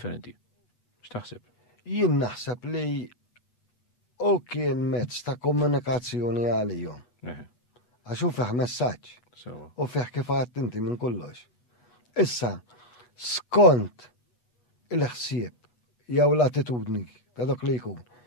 X'taħseb? Jien naħseb li u kien mezz ta' komunikazzjoni għalihom. Għax hu fih messaġġ. U fih kif għadt inti minn kollox. Issa, skont il-ħsieb jew l-attitudni ta' dak li jkun,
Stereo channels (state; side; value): late; right; 8.2 ms